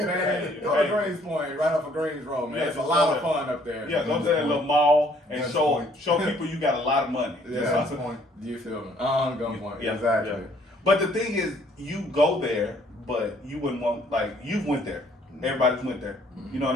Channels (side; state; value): both; normal; correlation 0.62